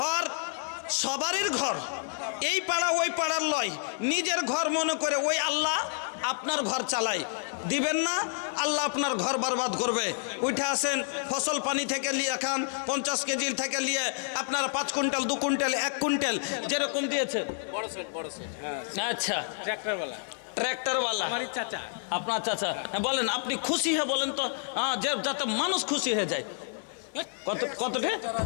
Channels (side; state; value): right; silent; 58 dB below the other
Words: সবারই ঘর, এই পাড়া ওই পাড়ার লয়, নিজের ঘর মনে করে ওই আল্লাহ আপনার ঘর চালায়। দিবেন না, আল্লাহ আপনার ঘর বরবাদ করবে। উঠে আসেন, ফসল পানি থেকে নিয়ে খান, 50 কেজির থেকে নিয়ে আপনারা 5 কুইন্টাল, 2 কুইন্টাল, 1 কুইন্টাল যেরকম দিয়েছে। আচ্ছা, ট্র্যাক্টরওয়ালা আপনার চাচা। হ্যাঁ বলেন, আপনি খুশি হয়ে বলেন তো, যাতে মানুষ খুশি হয়ে যায়। কতটা?